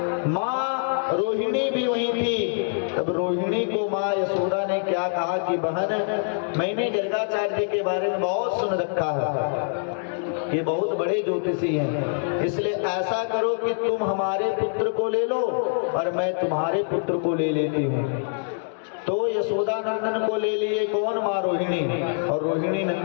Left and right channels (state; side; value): silent; right; digital silence